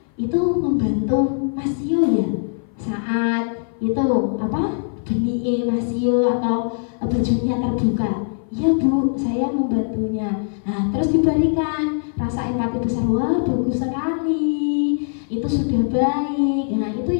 itu membantu Mas Tio ya saat itu benih Mas Tio atau bajunya terbuka. Ya Bu, saya membantunya. Nah, terus diberikan rasa empati besar. Wah, bagus sekali. Itu sudah baik. Nah, itu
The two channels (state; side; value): silent; right; 57 dB below the other